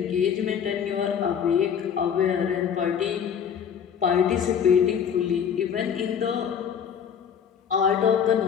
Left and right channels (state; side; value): quieter; right; 7.8 dB